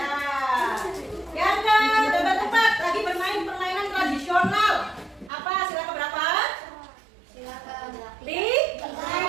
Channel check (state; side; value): drops out; left; at 5.3 s